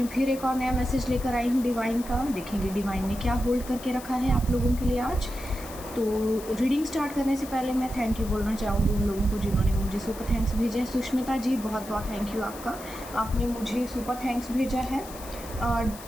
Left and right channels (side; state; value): left; noise; hiss, 15 dB below the sound